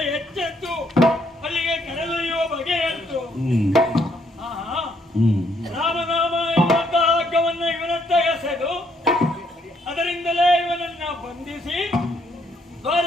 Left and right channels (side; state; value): both; normal; correlation 0.71